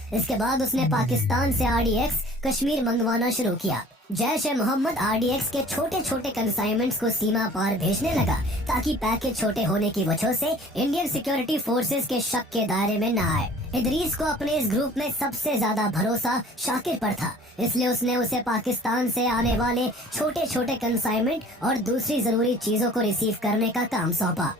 इसके बाद उसने पाकिस्तान से RDX कश्मीर मंगवाना शुरू किया। जैश-ए-मोहम्मद RDX के छोटे छोटे कंसाइनमेंट्स को सीमा पार भेजने लगा, ताकि पैकेज छोटे होने की वजह से इंडियन सिक्योरिटी फोर्सेस के शक के दायरे में न आए। इदरीस को अपने इस ग्रुप में सबसे ज्यादा भरोसा शाकिर पर था, इसलिए उसने उसे पाकिस्तान से आने वाले छोटे छोटे कंसाइनमेंट और दूसरी जरूरी चीजों को रिसीव करने का काम सौंपा।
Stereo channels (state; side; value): normal; both; correlation 0.49